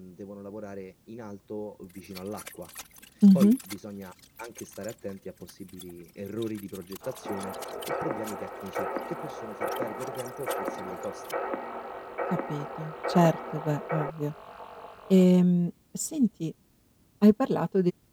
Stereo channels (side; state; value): both; identical; correlation 1.00